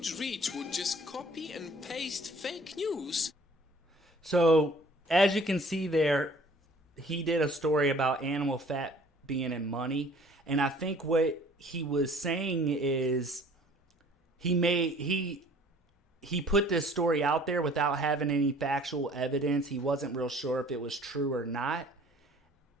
reach would just copy and paste fake news. So, as you can see there, he did a story about animal fat being in money. And I think what he was saying is he put this story out there without having any factual evidence. He wasn't real sure if it was true or not.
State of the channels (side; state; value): both; normal; correlation 0.52